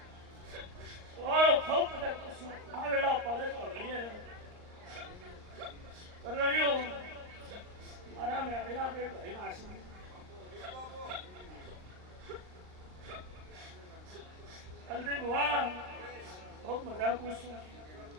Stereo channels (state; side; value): late; left; 39 ms